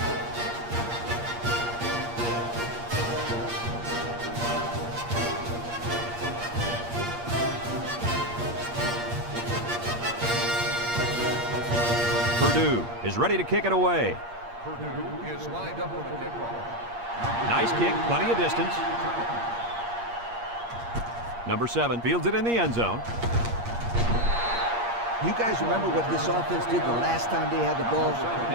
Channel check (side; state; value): left; late; 8.5 ms